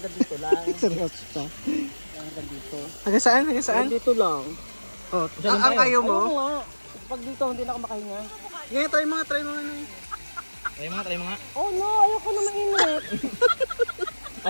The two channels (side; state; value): both; inverted; correlation -1.00